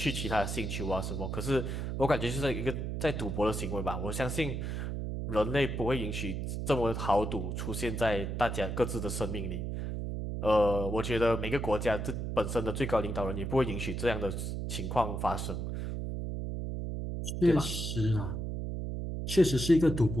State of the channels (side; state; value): right; noise; hum, 3 dB below the sound